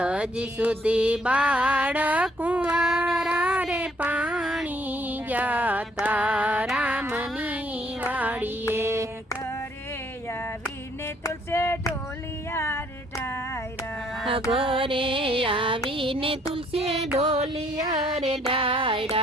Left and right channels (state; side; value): normal; both; correlation 0.65